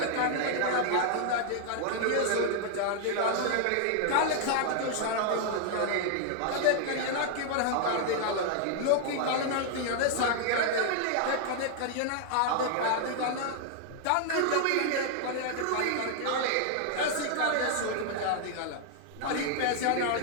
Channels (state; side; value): different; both; correlation 0.00